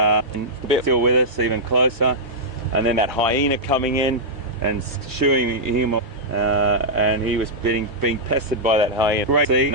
bit still with us, even closer, and then that hyena coming in and shooing him off, and he was being pestered by that hyena. Great to see.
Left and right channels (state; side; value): normal; both; correlation -0.09